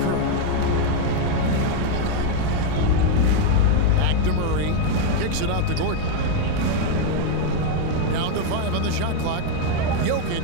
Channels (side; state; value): both; different; correlation 0.01